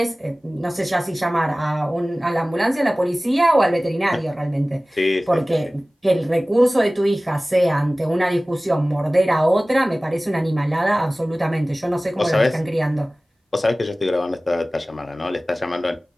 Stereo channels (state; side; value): normal; both; correlation 0.98